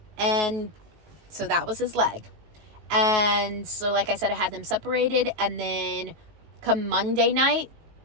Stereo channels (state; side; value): late; left; 19 ms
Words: And so that was his leg. And so, like I said, I had them separated. And then come Monday night,